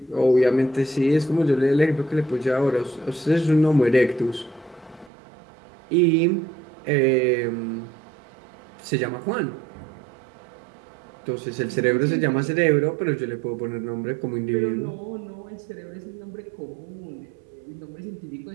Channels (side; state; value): left; drops out; at 5.1 s